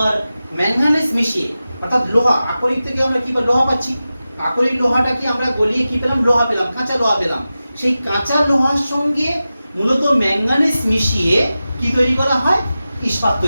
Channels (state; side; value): inverted; both; correlation -0.94